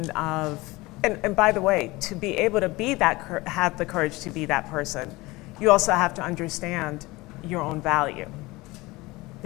of, and by the way, to be able to be that, have the courage to be that person, you also have to understand your own value.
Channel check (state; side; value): quieter; right; 21.6 dB